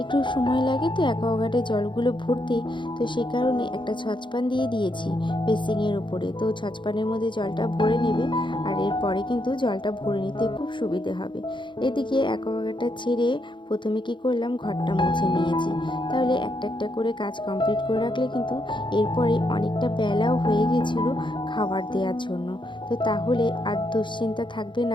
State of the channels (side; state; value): right; late; 0.23 ms